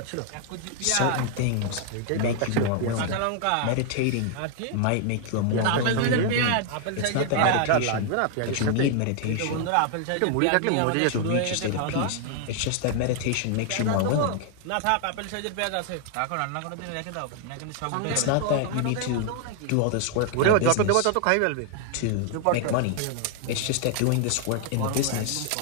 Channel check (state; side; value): different; both; correlation 0.00